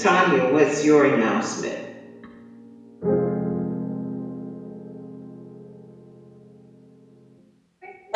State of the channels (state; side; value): identical; both; correlation 1.00